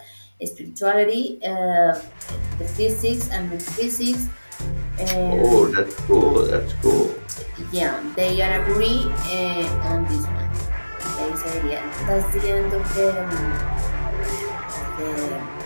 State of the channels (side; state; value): both; inverted; correlation -1.00